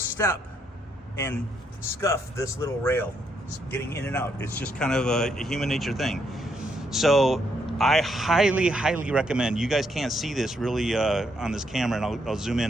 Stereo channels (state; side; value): normal; both; correlation 0.75